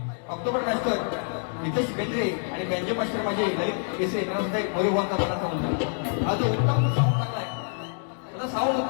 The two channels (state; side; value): silent; right; 60 dB below the other